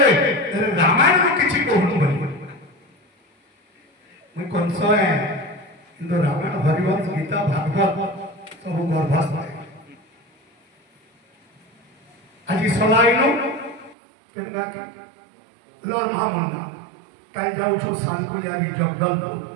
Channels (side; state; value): left; drops out; at 14.0 s